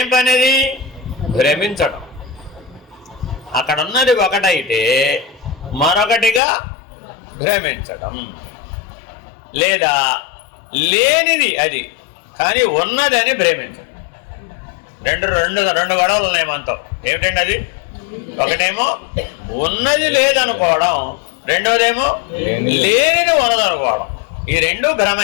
పని? అది భ్రమించడం. అక్కడ ఉన్నది ఒకటైతే మరొకటిగా భ్రమించడం, లేదా లేనిది అది కానీ ఉన్నదని భ్రమించడం. రెండు గొడవలు ఉన్నాయి మనతో. ఏమిటండి అది? ఒకటేమో ఉన్నది లేదనుకోవడం, రెండోదేమో లేనిది ఉన్నదనుకోవడం. ఈ రెండు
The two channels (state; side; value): drops out; right; at 6.4 s